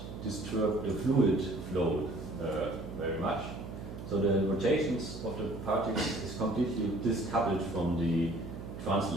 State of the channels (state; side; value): noise; right; hum, 10 dB below the sound